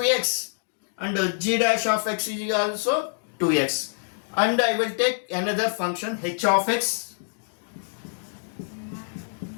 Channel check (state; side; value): silent; right; digital silence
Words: and g dash of x is also 2x. And I will take another function h of x.